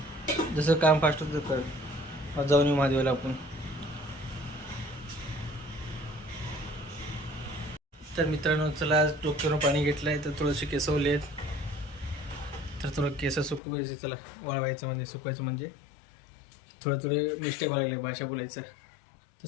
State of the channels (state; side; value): drops out; right; at 13.6 s